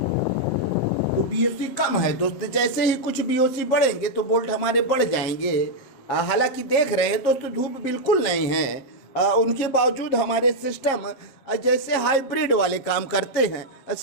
तो BOC कम है दोस्त। जैसे ही कुछ BOC बढ़ेंगे तो बोल्ट हमारे बढ़ जाएंगे। हालांकि देख रहे हैं दोस्तों, धूप बिल्कुल नहीं है, उनके बावजूद हमारे सिस्टम जैसे हाइब्रिड वाले काम करते हैं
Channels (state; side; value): late; right; 7.4 ms